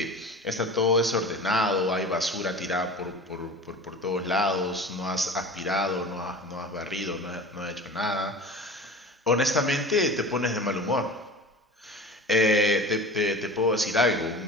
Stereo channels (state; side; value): normal; both; correlation 0.36